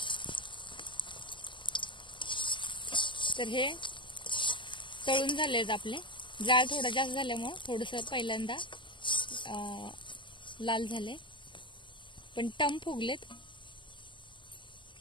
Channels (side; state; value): right; late; 0.24 ms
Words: तर हे तळून झालेत आपले. जाळ थोडा जास्त झाल्यामुळं थोडंसं पहिल्यांदा लाल झाले, पण टम फुगलेत.